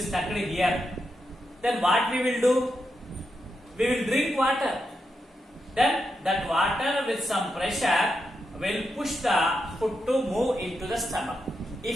stuck here. Then what we will do? We will drink water. Then that water with some pressure will push the food to move into the stomach.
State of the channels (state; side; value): normal; both; correlation 0.85